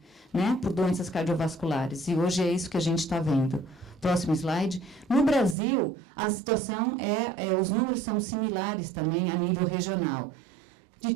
né, por doenças cardiovasculares. E hoje é isso que a gente está vendo. Próximo slide. No Brasil, a situação os números são similares também a nível regional. De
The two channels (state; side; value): drops out; left; at 5.6 s